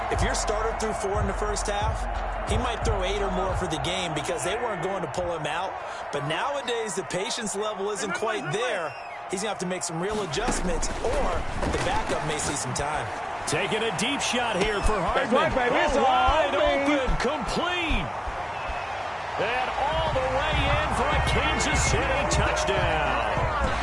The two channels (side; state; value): both; identical; correlation 1.00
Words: if your starter threw 4 in the first half, he might throw 8 or more for the game because they weren't going to pull him out. But nowadays, the patience level isn't quite there. He's going to have to make some real adjustments, or the backup may see some time. Taking a deep shot here for Hardman. Wide open, complete. And all the way in for a Kansas City touchdown.